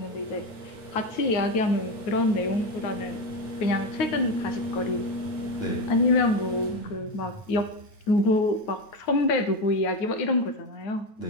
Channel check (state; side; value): late; right; 9.6 ms